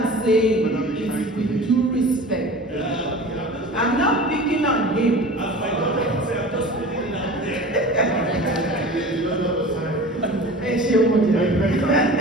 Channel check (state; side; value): normal; both; correlation 0.38